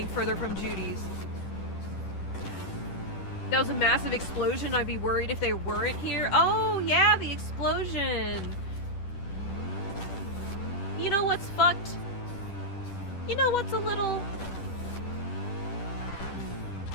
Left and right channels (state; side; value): late; right; 10 ms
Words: further from Judy's. That was a massive explosion. I'd be worried if they weren't here. Oh yeah, the explosion. You know what's fucked? You know what's a little...